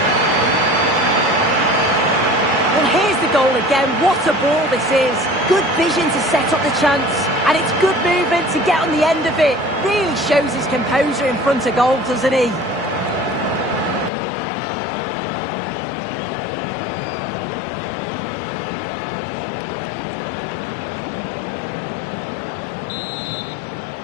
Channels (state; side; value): drops out; right; at 14.1 s